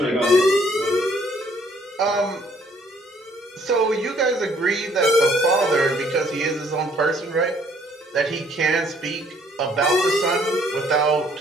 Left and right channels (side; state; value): both; normal; correlation 0.63